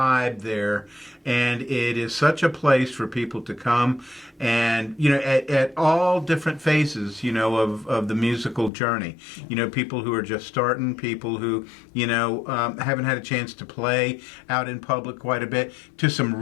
there, and it is such a place for people to come and, at all different phases, of the musical journey. People who are just starting, people who, haven't had a chance to play out in public quite a bit, to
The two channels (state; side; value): drops out; right; at 8.7 s